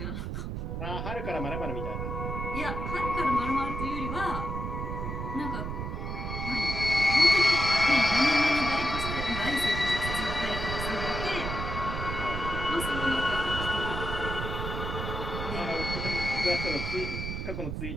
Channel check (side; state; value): right; noise; rumble, 4 dB below the sound